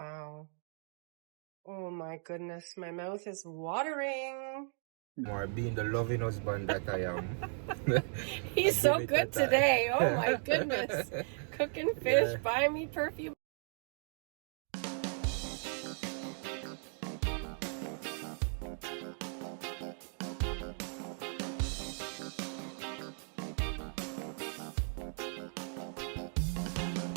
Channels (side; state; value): left; silent; 53 dB below the other